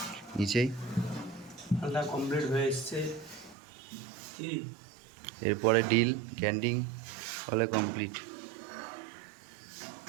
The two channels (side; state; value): left; drops out; at 3.6 s